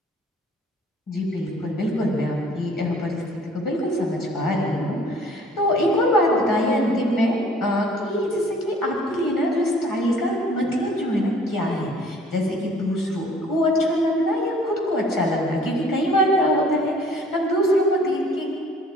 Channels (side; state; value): both; normal; correlation 0.54